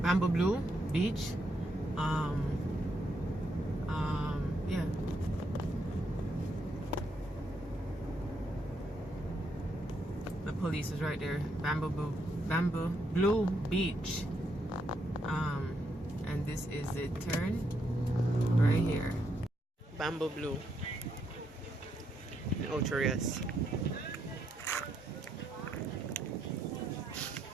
Bamboo Blue Beach. Yeah. The police is right there. Bamboo Blue Beach. And this is the turn right here. Bamboo Blue in Ocho Rios.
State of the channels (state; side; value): normal; both; correlation 0.78